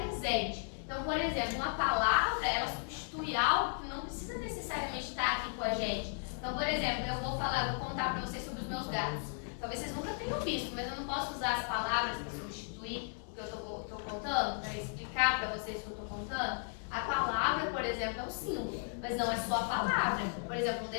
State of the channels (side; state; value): right; silent; 54 dB below the other